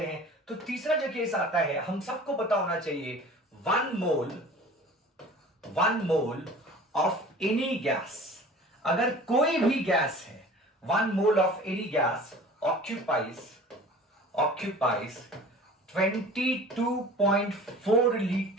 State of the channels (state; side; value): normal; both; correlation 0.43